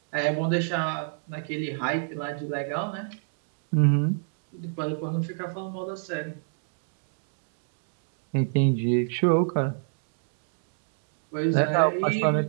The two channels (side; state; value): left; silent; digital silence